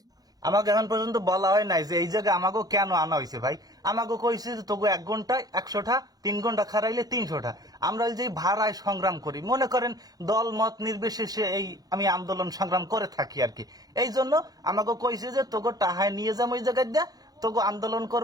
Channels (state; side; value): late; left; 0.19 ms